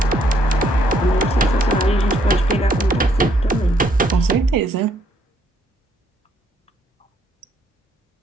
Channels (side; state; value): both; normal; correlation 0.70